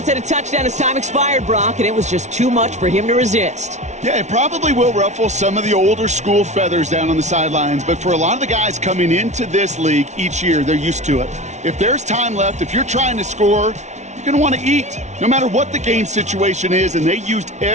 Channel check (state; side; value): late; left; 0.33 ms